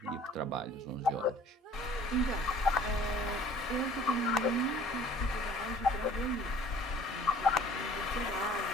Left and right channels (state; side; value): normal; both; correlation 0.51